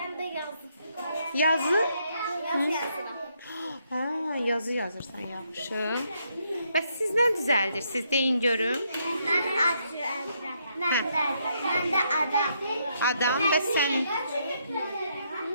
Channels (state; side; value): inverted; both; correlation -0.75